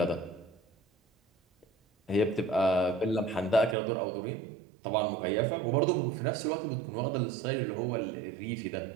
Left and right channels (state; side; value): drops out; left; at 3.8 s